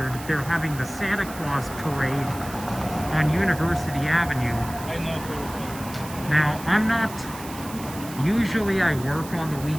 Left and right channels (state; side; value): noise; right; hiss, 15 dB below the sound